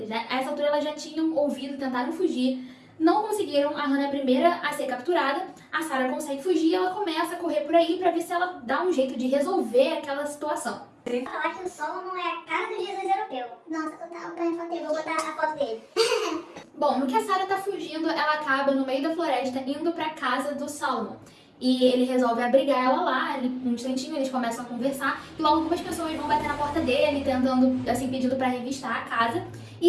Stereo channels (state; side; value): identical; both; correlation 1.00